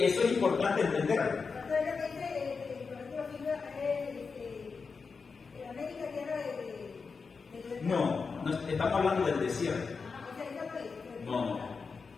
es importante entender. No, estamos hablando del desierto. No.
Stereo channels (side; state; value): right; quieter; 5.0 dB